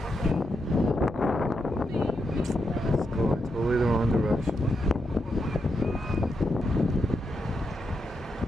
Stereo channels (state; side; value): normal; both; correlation 0.84